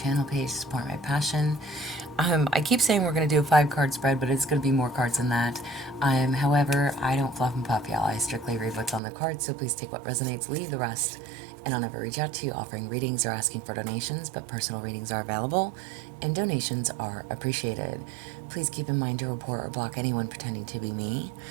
page to support my passion. I keep saying we're going to do a 5-card spread, but it's going to be more cards than that. However, I don't fluff and puff, y'all. I strictly read what's on the cards, so please take what resonates, leave the rest. And I'll never reach out to you offering readings or asking for donations, but personal readings are available and donations are appreciated. Please keep in mind to report or block anyone pretending to be me.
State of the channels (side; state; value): left; drops out; at 9.0 s